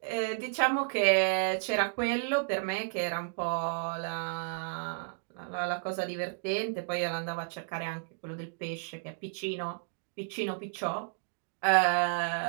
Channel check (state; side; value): silent; left; digital silence